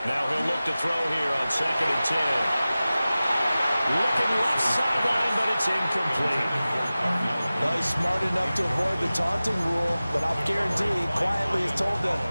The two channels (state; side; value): inverted; both; correlation -0.97